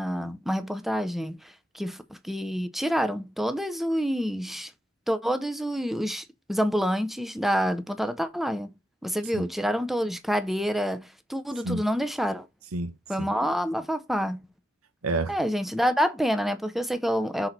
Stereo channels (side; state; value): both; normal; correlation 0.88